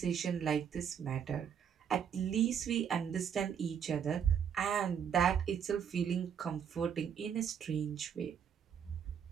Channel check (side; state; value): left; quieter; 7.9 dB